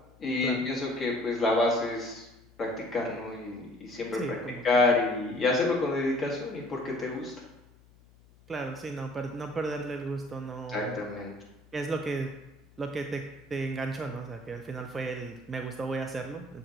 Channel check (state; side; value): noise; left; hum, 27 dB below the sound